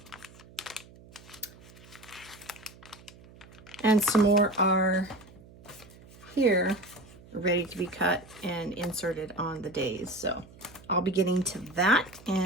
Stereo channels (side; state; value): right; noise; hum, 22 dB below the sound